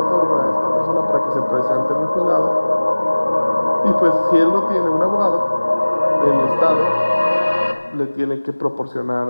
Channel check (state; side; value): inverted; both; correlation -1.00